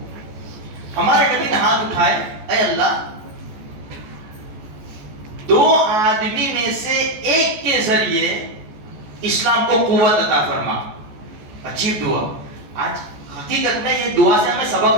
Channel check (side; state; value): left; late; 14 ms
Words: ہمارے نبی نے ہاتھ اٹھائے، اے اللہ دو آدمی میں سے ایک کے ذریعے اسلام کو قوت عطا فرما۔ عجیب دعا۔ آج حقیقت میں یہ دعا سے ہمیں سبق